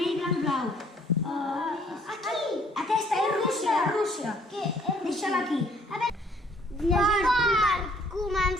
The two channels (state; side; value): normal; both; correlation 0.62